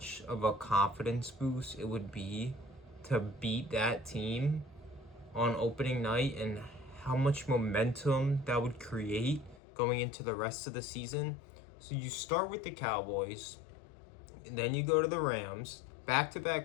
of a confidence boost it would be to beat that team on opening night and how much momentum that would create going into the rest of the season. So you start with the Cowboys, and then you go to the Rams,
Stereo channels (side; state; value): right; drops out; at 9.6 s